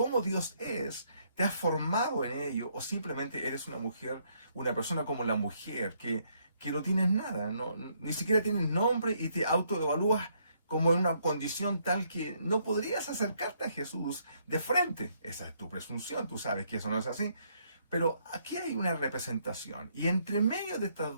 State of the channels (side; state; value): both; inverted; correlation -0.71